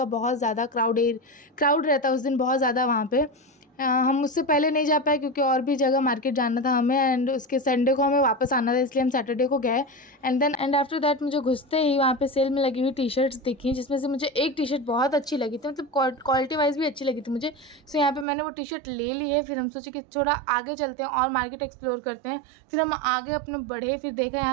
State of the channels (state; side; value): drops out; left; at 18.2 s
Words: बहुत ज़्यादा क्राउड रहता है उस दिन, बहुत ज़्यादा वहाँ पे। हम उससे पहले नहीं जा पाए क्योंकि और भी जगह मार्केट जाना था हमें। एंड उसके संडे को हमें वापस आना था, इसलिए हम सैटरडे को गए। एंड आफ्टर दैट मुझे घुसते ही वहाँ पे सेल में लगी हुई टी शर्ट्स दिखी, जिसमें से मुझे एक टी शर्ट बहुत अच्छी लगी थी, मतलब क्वालिटी वाइज भी अच्छी लगी थी मुझे। सो यहाँ पे मैंने वो टी शर्ट ले ली है। फिर हम सोचे कि थोड़ा आगे चलते हैं और मार्केट एक्सप्लोर करते हैं। फिर हम आगे अपने बढ़े, फिर देखा